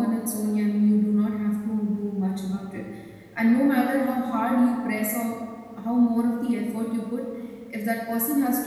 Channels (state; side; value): identical; both; correlation 1.00